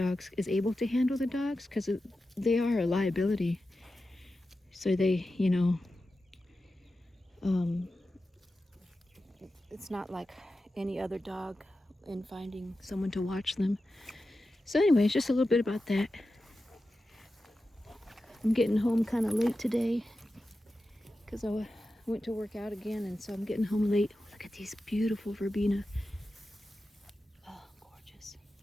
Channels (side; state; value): both; normal; correlation 0.92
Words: is able to handle the dogs, because they are a liability. So they, you know, it's not like any other dog in finding someone to watch them. So anyway, it's just a little bit about that. I'm getting home kind of late today because I went to work out again, and so I'm getting home late. Look at these beautiful verbena. Oh, gorgeous.